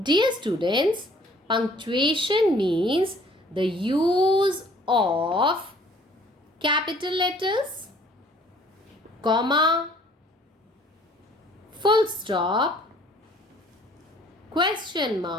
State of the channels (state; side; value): normal; both; correlation 0.56